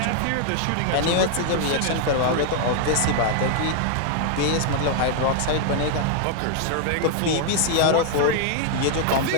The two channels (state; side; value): different; both; correlation 0.00